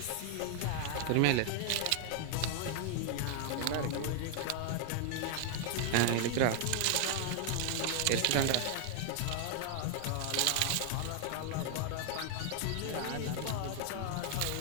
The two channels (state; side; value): different; both; correlation 0.00